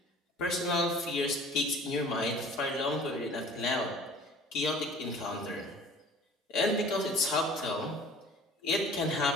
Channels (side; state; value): both; normal; correlation 0.47